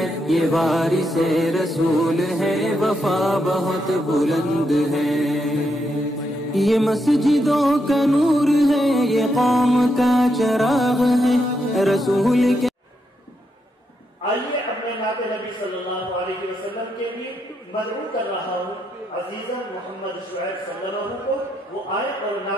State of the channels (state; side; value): normal; both; correlation 0.80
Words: ये वारिसे रसूल है, वफा बहुत बुलंद है। ये मस्जिदों का नूर है, ये कौम का चराग है, रसूल के। आइए अपने नाते नबी सल्लल्लाहु अलैहि वसल्लम के लिए मदऊ कर रहा हूँ अजीज़न मोहम्मद शुएब सल्लल्लाहु को, वो आए और